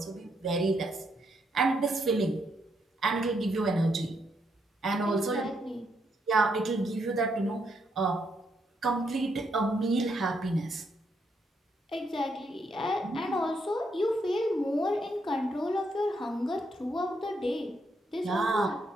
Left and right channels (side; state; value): both; normal; correlation 0.77